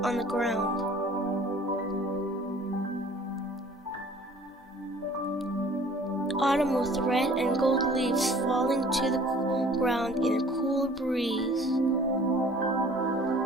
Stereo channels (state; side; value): normal; both; correlation 0.51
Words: on the ground. Autumn with red and gold leaves falling to the ground in a cool breeze.